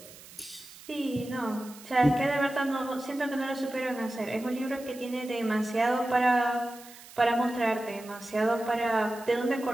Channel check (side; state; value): right; noise; hiss, 19 dB below the sound